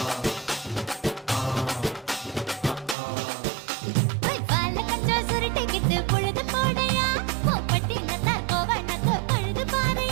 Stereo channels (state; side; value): drops out; left; at 3.0 s